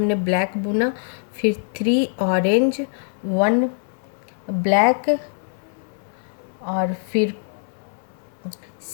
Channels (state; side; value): silent; right; 63 dB below the other